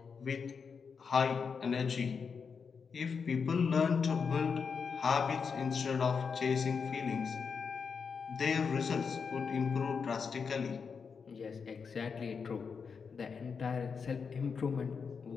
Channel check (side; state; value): right; quieter; 5.8 dB